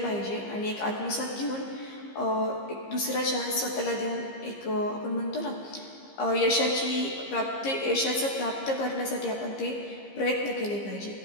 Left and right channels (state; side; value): late; right; 15 ms